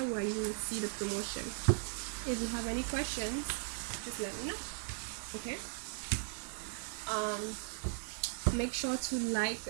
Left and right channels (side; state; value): left; silent; 53 dB below the other